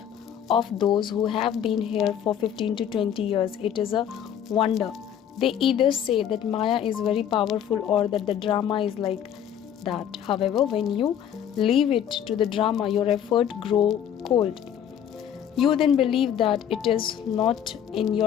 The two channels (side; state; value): right; quieter; 9.4 dB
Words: of those who have been here for 15 to 20 years. It is a wonder. They either say that Maya is very powerful or that the drama is like that. However, when you leave it to the drama, your effort grow cold. You then believe that it is not in